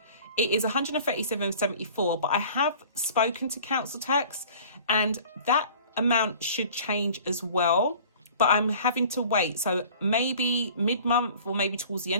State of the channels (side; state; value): both; inverted; correlation -0.47